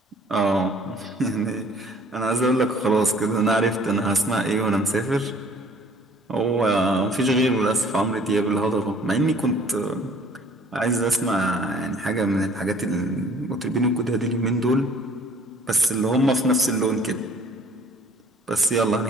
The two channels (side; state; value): both; normal; correlation 0.55